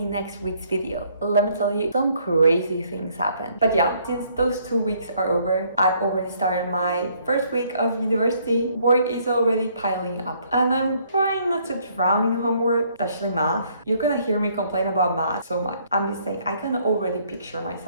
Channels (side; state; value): both; inverted; correlation -0.66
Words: week's video. Let me tell you, some crazy things happen. But yeah, since those 2 weeks are over, I've already started my first week of university. Work is already piling up, and I'm trying not to drown in homework, especially math. You're gonna hear me complain about math so much. I'm just saying, I can already picture